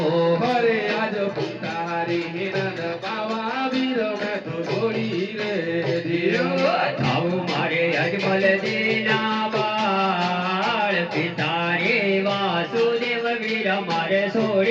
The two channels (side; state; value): both; identical; correlation 1.00